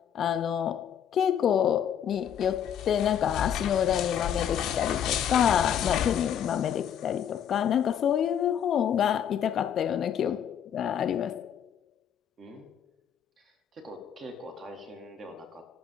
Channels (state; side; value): quieter; right; 9.0 dB